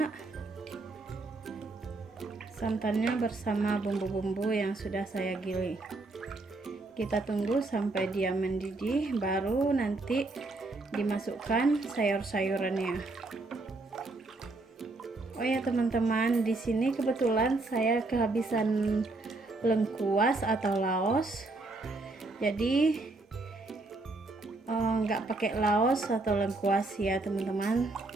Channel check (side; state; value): left; quieter; 3.2 dB